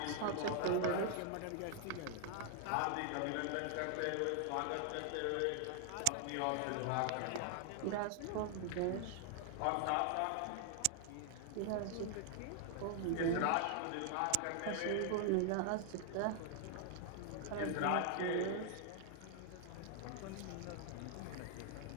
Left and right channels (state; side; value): different; both; correlation 0.00